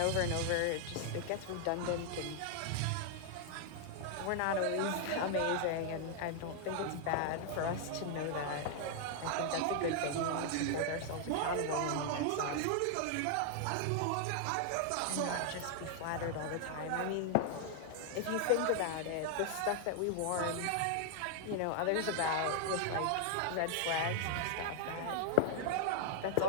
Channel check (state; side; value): different; both; correlation 0.00